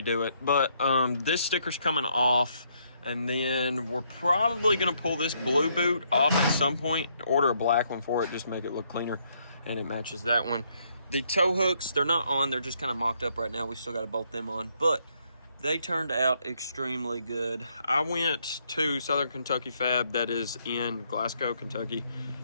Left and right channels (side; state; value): both; inverted; correlation -0.72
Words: it, but this sticker's coming off, and then we're probably gonna pull this blue boot off at some point, order a black one for it, just to make it look cleaner, and it matches that one. The tow hooks, they're not on, they're just kind of mocked up right now. We still got to bolt them on, but they turned out extremely good. I went to Southern Kentucky Fab, that is in Glasgow, Kentucky.